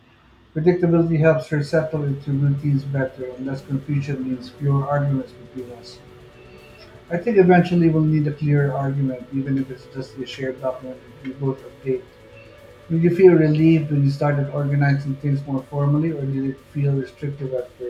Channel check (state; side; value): identical; both; correlation 1.00